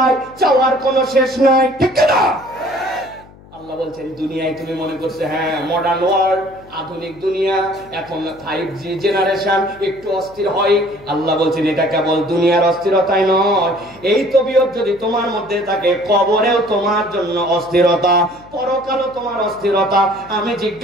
চাওয়ার কোনো শেষ নাই। ঠিক না? আল্লাহ বলছেন দুনিয়ায় তুমি মনে করছে হ্যাঁ মডার্ন ওয়ার্ল্ড, আধুনিক দুনিয়া, এখন 5G জেনারেশন, একটু অস্থির হয়। আল্লাহ বলছেন এটা কেবল দুনিয়ার অস্থিরতাই নয়, এই তবিয়ত যদি তোমার মধ্যে থাকে, কবরেও তোমার জন্য অস্থিরতা, পরকালও তোমার অস্থিরতা। আমি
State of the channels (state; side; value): noise; left; hum, 23 dB below the sound